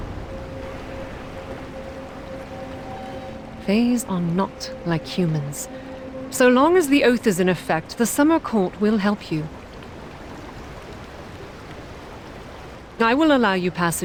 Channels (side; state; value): both; identical; correlation 1.00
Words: Fays are not like humans. So long as the oath is in effect, the Summer Court will help you. I will allow you